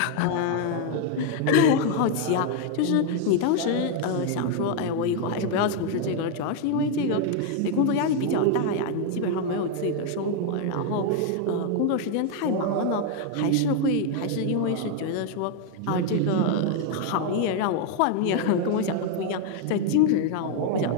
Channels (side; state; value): both; different; correlation 0.01